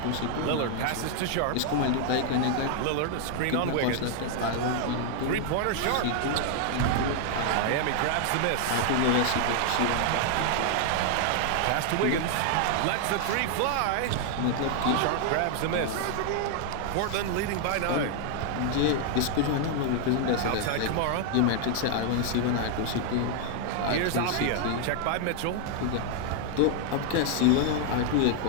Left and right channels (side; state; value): both; different; correlation 0.00